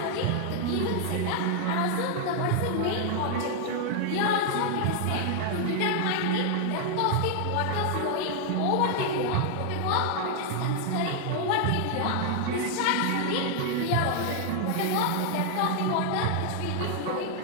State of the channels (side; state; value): both; different; correlation 0.00